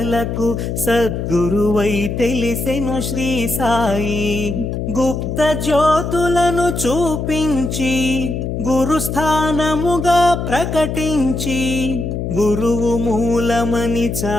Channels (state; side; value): noise; left; hum, 3 dB below the sound